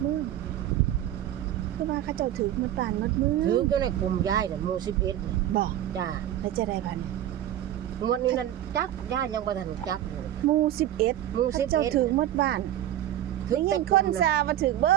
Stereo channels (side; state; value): left; quieter; 12.1 dB